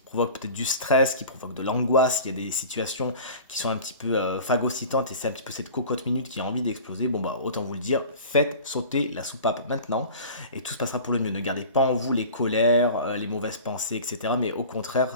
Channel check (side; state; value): both; inverted; correlation -0.40